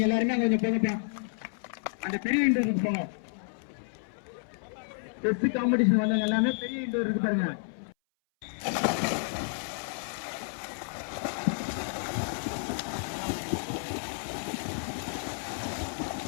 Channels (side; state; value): right; silent; 57 dB below the other